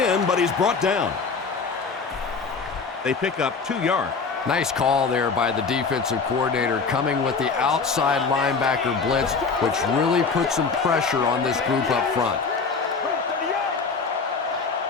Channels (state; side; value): quieter; right; 4.9 dB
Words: but he's brought down. They pick up 2 yards. Nice call there by the defensive coordinator, coming with the outside linebacker blitz, which really puts some pressure on this group up front.